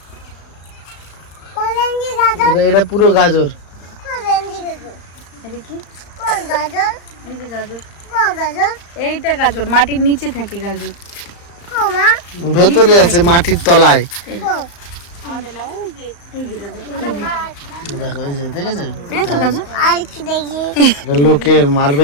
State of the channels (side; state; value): right; late; 35 ms